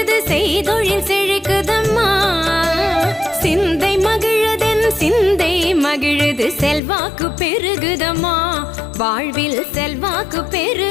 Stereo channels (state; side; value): drops out; right; at 6.8 s